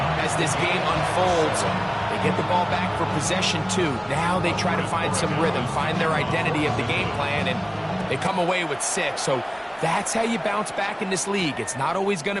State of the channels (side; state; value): both; identical; correlation 1.00